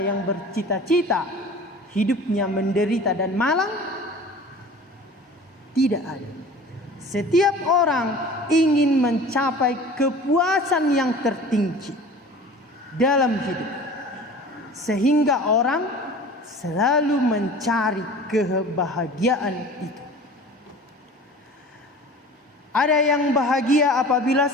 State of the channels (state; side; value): normal; both; correlation 0.41